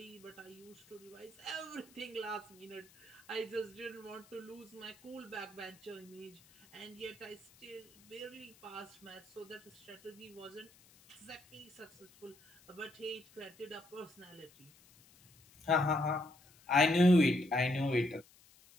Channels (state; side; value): noise; left; hiss, 26 dB below the sound